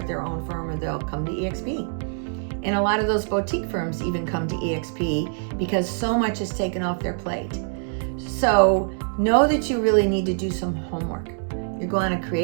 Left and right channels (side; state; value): left; silent; 62 dB below the other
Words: their own firm, or they'll come to EXP. And a lot of those boutique firms even come to EXP because so much is taken off their plate. So know that you really need to do some homework. You're going to